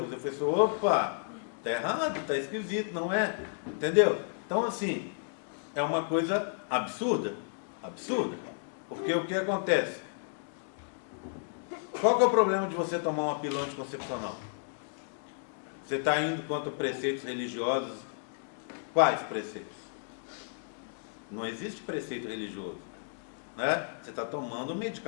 Eu falei assim, opa, tá errado, tá esquisito, não é? Entendeu? Então assim, é uma coisa absurda. Absurda. Porque o que acontece? Qual que é o problema de você tomar uma pílula anticoncepcional? Você está indo contra preceitos religiosos. Quais preceitos? Não existe preceito religioso, né? Você está tomando um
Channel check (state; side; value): silent; right; digital silence